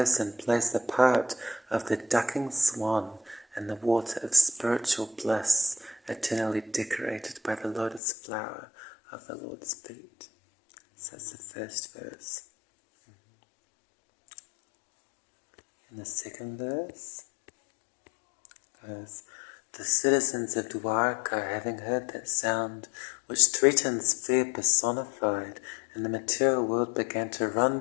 plays the part of the ducking swan in the water of spiritual bliss, eternally decorated by the lotus flower of the Lord's feet." So that's the first verse. And the second verse goes, "The citizens of Dwarka, having heard that sound which threatens fear personified in the material world, began to run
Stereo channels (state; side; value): drops out; right; at 8.0 s